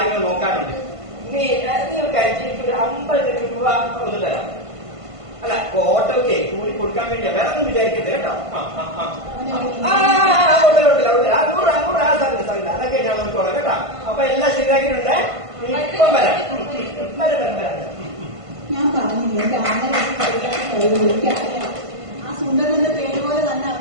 നോക്കാനുണ്ട്. നീ ഒരു കാര്യം, എനിക്കൊരു 50 രൂപ ഒന്ന് തരാം. അല്ല, ഓട്ടോക്കെ കൂടി കൊടുക്കാൻ വേണ്ടിയാ, വേറെ ഒന്നും വിചാരിക്കരുത് കേട്ടോ. അതൊക്കെ ഞാൻ നോക്കിക്കോളാം കേട്ടോ. അപ്പൊ എല്ലാം ശരിയാക്കിയിട്ടുണ്ട്. ഇപ്പം വരാം. ഞാൻ പറഞ്ഞില്ലേ ആ സുന്ദരന്റെ പേര് പോലെ തന്നെ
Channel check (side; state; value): left; late; 1.5 ms